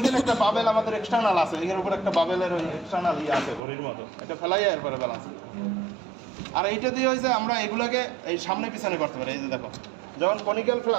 একটা বাবেল আমাদের এক্সটার্নাল আছে, এখানে উপর একটা বাবেলের ওই এক্সটার্নাল আছে ঘড়ির মতো, এটা ফেলাই এরপরে ব্যালেন্স। আর এইটা দিয়ে হয়েছে আমরা এগুলোকে এই সামনে পিছনে করতে পারি। এই যে দেখো, যখন কনিক্যাল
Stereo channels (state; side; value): drops out; left; at 3.6 s